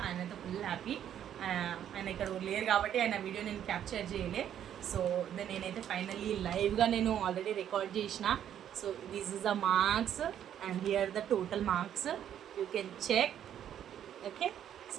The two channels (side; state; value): left; quieter; 10.1 dB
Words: ఆయనతో ఫుల్ హ్యాపీ. ఆయన ఇక్కడ లేరు కాబట్టి ఆయన వీడియో నేను క్యాప్చర్ చేయలే. సో నేనైతే ఫైనల్లీ లైవ్గా నేను ఆల్రెడీ రికార్డ్ చేసిన. So this is the marks and here the total marks, you can check. Okay,